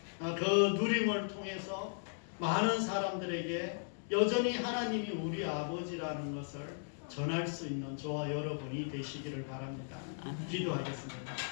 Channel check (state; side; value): silent; right; digital silence